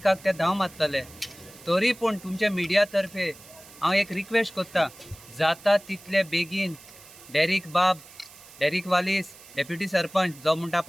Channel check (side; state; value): right; noise; hiss, 20 dB below the sound